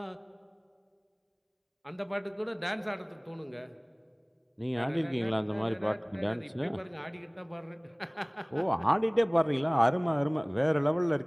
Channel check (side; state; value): both; identical; correlation 1.00